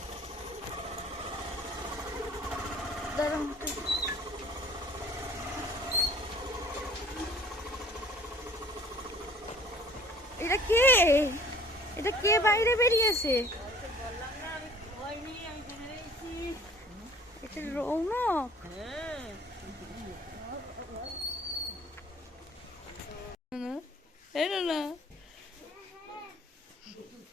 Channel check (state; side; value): normal; both; correlation 0.51